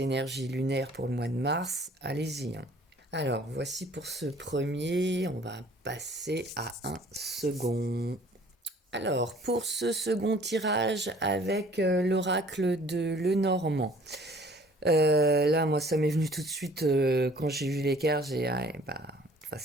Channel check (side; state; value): both; normal; correlation 0.53